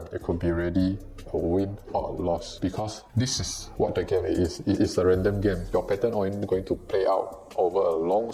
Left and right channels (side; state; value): both; identical; correlation 1.00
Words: It could be really a win or a loss because this is what the game is. It is a random game. Your pattern only going to play out over a long